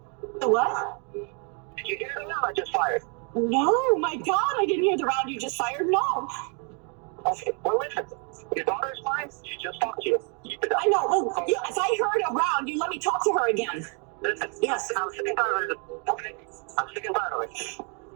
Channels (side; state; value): left; quieter; 37.5 dB